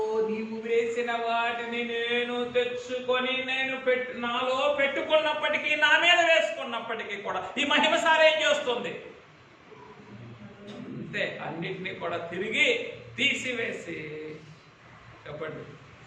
నీవు వేసిన వాటిని నేను తెచ్చుకొని నాలో పెట్టుకున్నప్పటికీ, నా మీద వేసుకున్నప్పటికీ కూడా ఈ మహిమ సారేం చేస్తుంది? అంతే, అన్నిటినీ కూడా తిరిగి తీసివేసి, చెప్పండి,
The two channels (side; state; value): both; identical; correlation 1.00